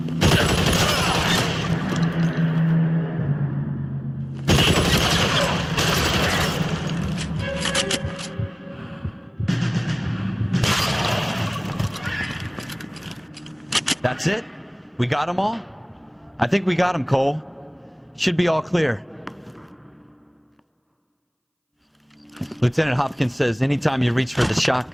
That's it? We got them all? I think we got them, Cole. Should be all clear. Lieutenant Hopkins says anytime you reach for the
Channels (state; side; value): identical; both; correlation 1.00